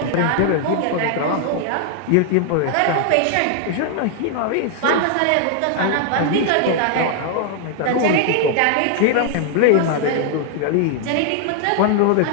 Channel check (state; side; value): different; both; correlation 0.00